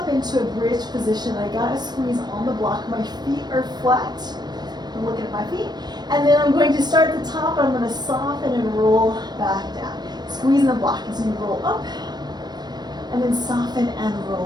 into a bridge position. I gotta squeeze on the block. My feet are flat. I'm looking at my feet. And then I'm going to start at the top. I'm gonna soften and roll back down. Squeeze in the block as you roll up. And then soften and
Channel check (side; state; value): left; late; 0.20 ms